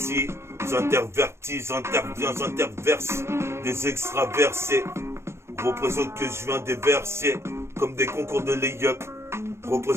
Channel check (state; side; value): late; left; 0.13 ms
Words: j'intervertis, j'interviens, j'interverse des extraversés. Représente que je viens des versets, comme des concours de lay-up.